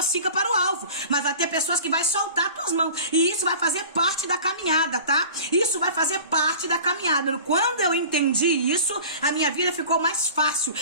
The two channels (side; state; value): both; inverted; correlation -0.41